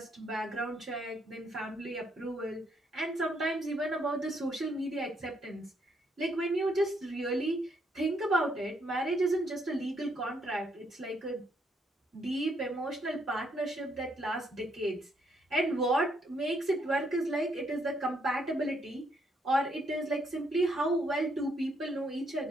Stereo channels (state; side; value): normal; both; correlation 0.73